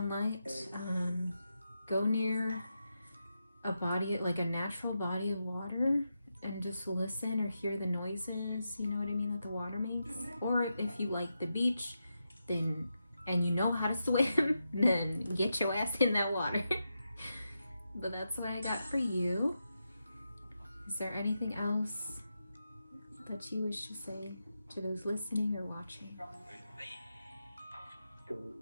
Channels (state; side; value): inverted; both; correlation -0.87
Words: go near a body, like a natural body of water, and just listen or hear the noises, you know what I mean, that the water makes. Or if you like the beach, then, and you know how to swim, then get your ass in that water. But that's what I got for you. Is there anything else that you wish to say to those listening or watching?